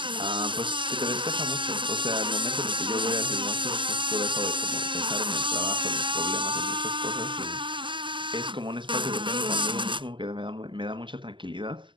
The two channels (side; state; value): left; late; 0.24 ms